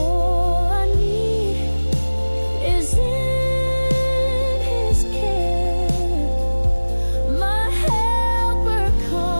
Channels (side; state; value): both; inverted; correlation -1.00